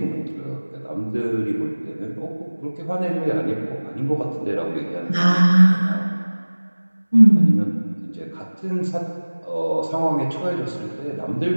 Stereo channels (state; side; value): inverted; both; correlation -1.00